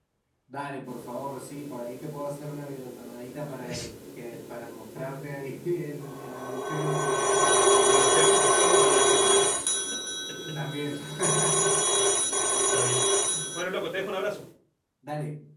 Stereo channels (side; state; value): both; identical; correlation 1.00